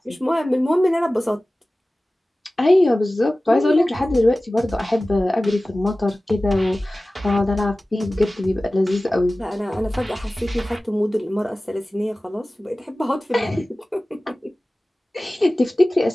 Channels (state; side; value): normal; both; correlation 0.97